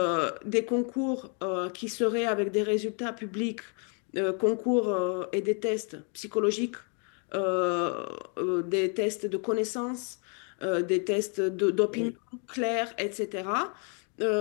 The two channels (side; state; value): right; quieter; 39.4 dB